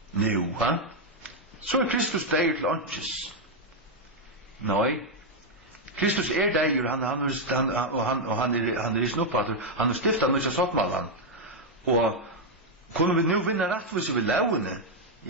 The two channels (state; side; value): normal; both; correlation 0.01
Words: Nu, så Kristus deir til åndsjes. Nei. Kristus deir, han er i snuppater, han stiftet nøysa sottmallan. Og kunne vi nu vinne rattvise vi lauene,